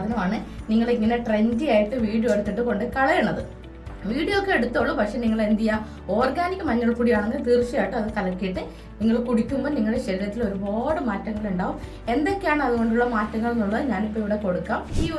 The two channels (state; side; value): identical; both; correlation 1.00